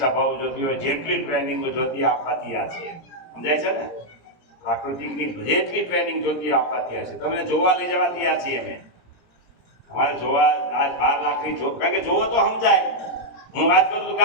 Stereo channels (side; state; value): right; late; 17 ms